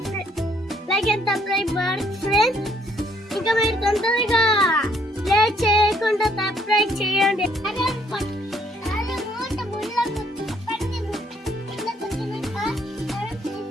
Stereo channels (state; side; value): normal; both; correlation 0.66